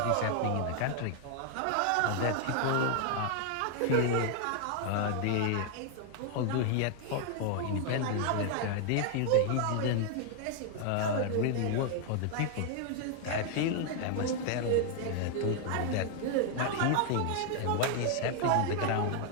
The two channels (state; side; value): different; both; correlation 0.00